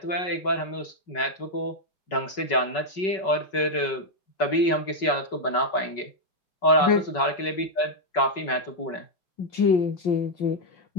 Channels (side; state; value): right; late; 5.3 ms